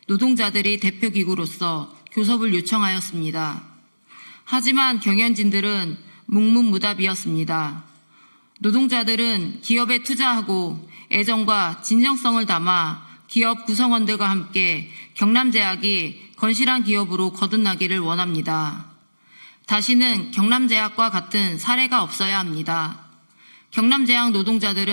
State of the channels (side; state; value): both; inverted; correlation -1.00